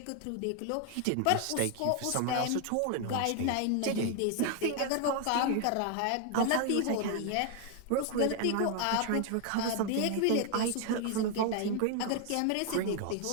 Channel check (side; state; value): both; different; correlation 0.00